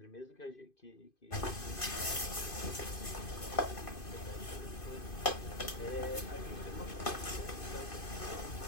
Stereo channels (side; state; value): right; late; 2.5 ms